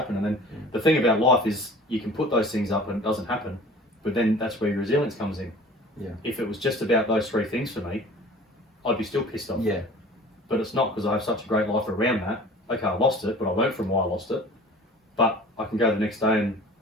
And then the thing about life is you can put those things up and it doesn't happen, but then that's where your resilience comes in. Yeah. If it was just about those three things for me, I'd be still pissed off. Yeah. But it's not, because I have such a great life around that. Okay, I lost it, but I learned from why I lost it. But I can go the next day and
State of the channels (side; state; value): both; normal; correlation 0.44